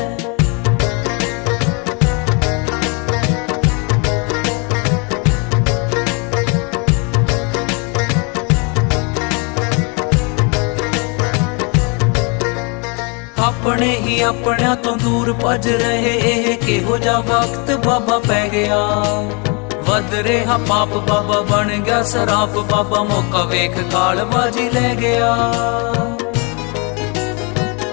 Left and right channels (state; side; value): quieter; right; 33.1 dB